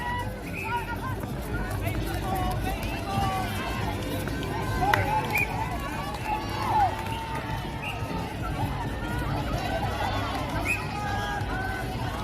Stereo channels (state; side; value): identical; both; correlation 1.00